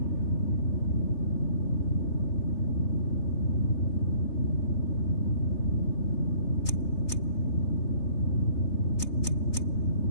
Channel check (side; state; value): right; late; 3.4 ms